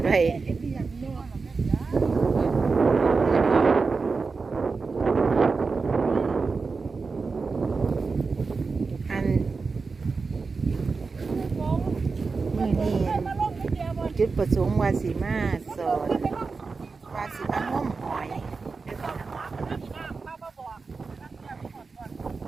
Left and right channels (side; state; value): left; quieter; 4.5 dB